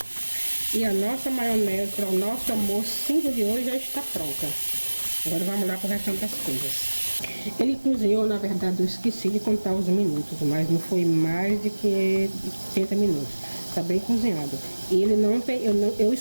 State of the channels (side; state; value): both; inverted; correlation -1.00